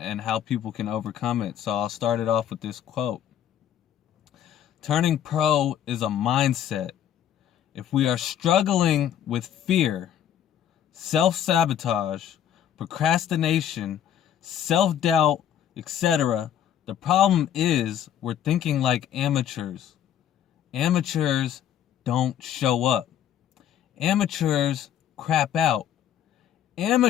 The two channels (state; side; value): quieter; right; 10.0 dB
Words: how people can overcome it. So I'll start it off with this quote. Turning pro is a mindset. If we are struggling with fear, self-sabotage, procrastination, self-doubt, etc., the problem is we're thinking like amateurs. Amateurs don't show up. Amateurs crap out.